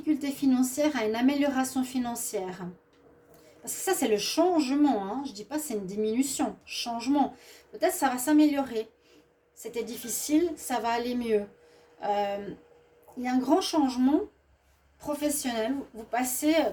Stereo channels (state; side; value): identical; both; correlation 1.00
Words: financière à une amélioration financière. Parce que ça, c'est le changement. Hein. Je ne dis pas c'est une diminution. Changement. Peut-être ça va s'améliorer. C'était difficile, ça va aller mieux. Il y a un grand changement professionnel. Vous passez,